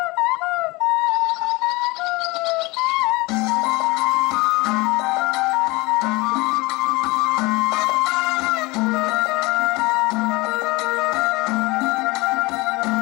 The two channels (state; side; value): quieter; right; 23.7 dB